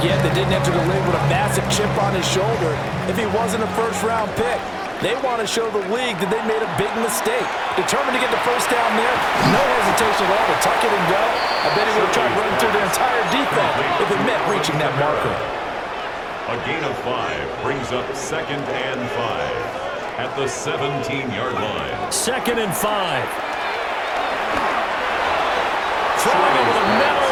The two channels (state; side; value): identical; both; correlation 1.00